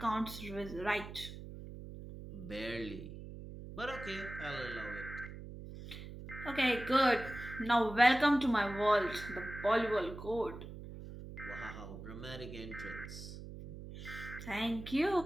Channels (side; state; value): right; noise; hum, 11 dB below the sound